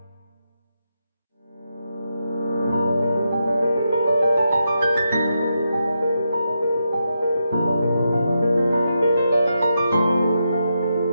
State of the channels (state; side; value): inverted; both; correlation -0.85